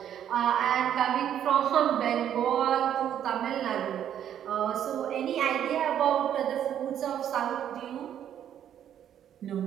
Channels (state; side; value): quieter; left; 10.0 dB